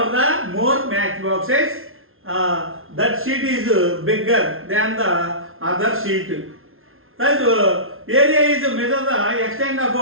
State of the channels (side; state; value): left; late; 0.61 ms